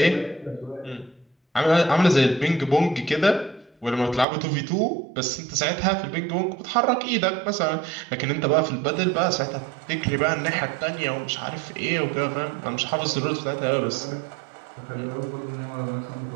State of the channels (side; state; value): left; drops out; at 4.2 s